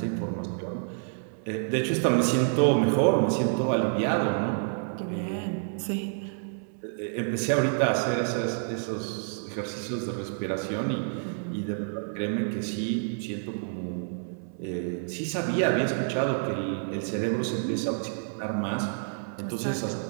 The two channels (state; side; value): silent; left; 59 dB below the other